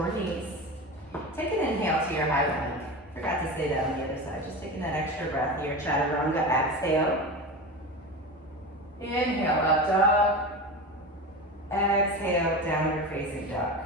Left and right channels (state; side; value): normal; both; correlation 0.26